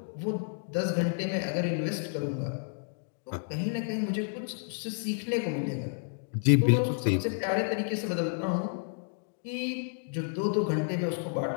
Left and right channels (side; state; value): right; silent; digital silence